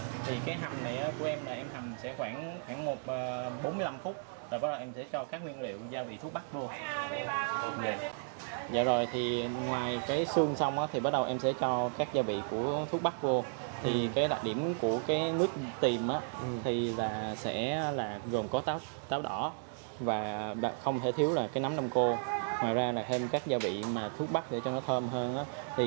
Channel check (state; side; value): silent; left; digital silence